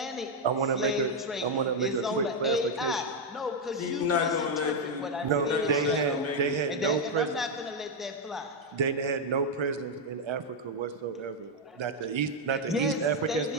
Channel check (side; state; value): both; normal; correlation 0.02